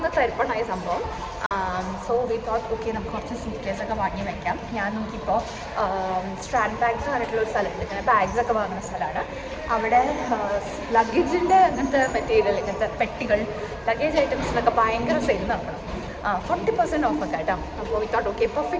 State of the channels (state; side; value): identical; both; correlation 1.00